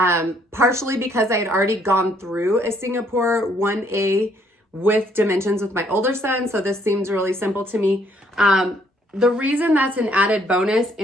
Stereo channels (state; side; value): normal; both; correlation 0.67